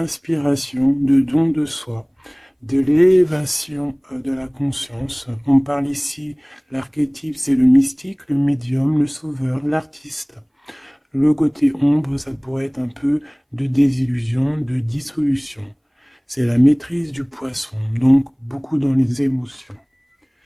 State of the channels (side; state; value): both; identical; correlation 1.00